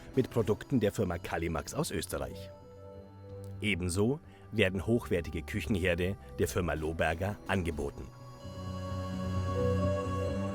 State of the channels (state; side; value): identical; both; correlation 1.00